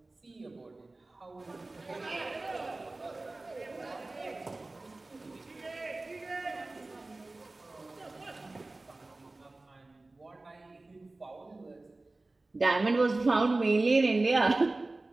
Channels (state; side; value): quieter; left; 3.1 dB